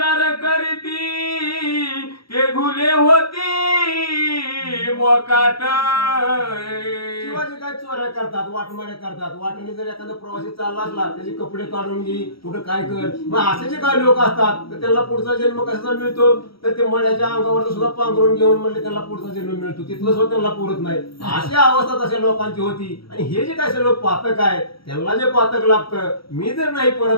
करीती ते घुले होती मोकाट. किंवा जे काय चोऱ्या करतात वाटमाड्या करतात वाटेने जर एखादा प्रवासी चालला असला त्याचे कपडे काढून घे कुठं काय कर मग असे जे काही लोक असतात तर त्यांना पुढचा जन्म कसा मिळतो तर ते मड्याच्या अंगावर सुद्धा पांघरून घेऊन म्हणले त्यांना पुढचा जन्म मिळतो तिथलं सुद्धा त्यांना पुरत नाही अशा अवस्था तशा लोकांची होती. आणि हे जे काय सर्व पातक आहे त्यांना जे पातक लागतं मी जर नाही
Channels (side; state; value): right; late; 0.75 ms